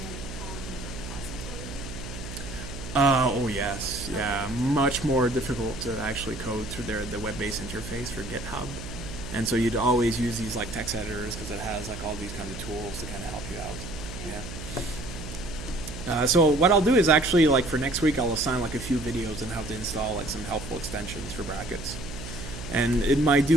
on the repository. Oh yes, yeah, much more difficult to actually code through the web-based interface for GitHub. And so you'd always use these like text editors because it has like all these kind of tools to kind of help you out. Yeah. So what I'll do is actually like for next week I'll assign like a few videos on how to install like some helpful extensions for brackets. And it might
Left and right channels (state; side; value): noise; right; hum, 10 dB below the sound